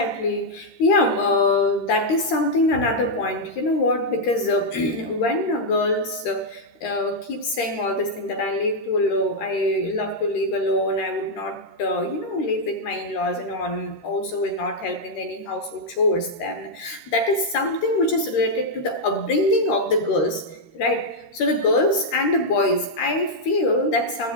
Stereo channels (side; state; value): right; late; 13 ms